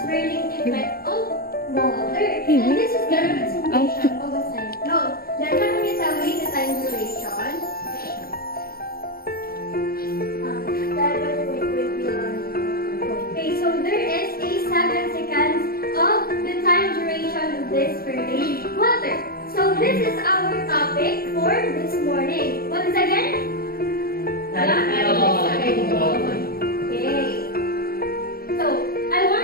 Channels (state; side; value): late; right; 0.44 ms